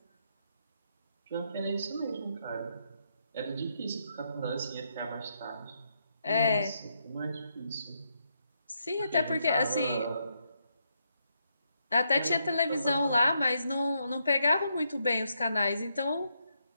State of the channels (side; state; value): both; inverted; correlation -0.79